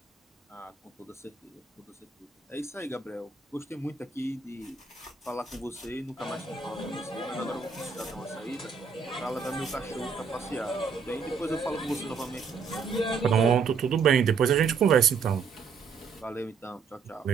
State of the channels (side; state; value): left; quieter; 5.5 dB